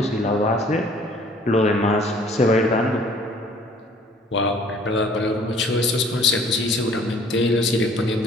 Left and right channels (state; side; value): normal; both; correlation 0.55